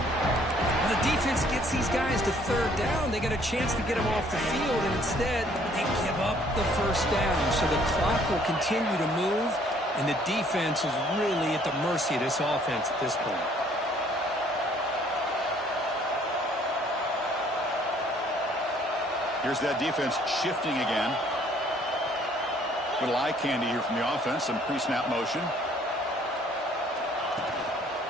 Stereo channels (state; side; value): normal; both; correlation 0.61